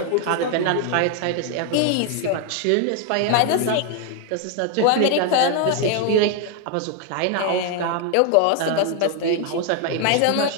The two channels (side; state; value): both; different; correlation 0.01